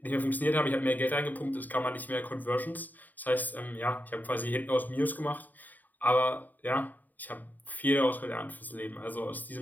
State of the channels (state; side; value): late; right; 0.085 ms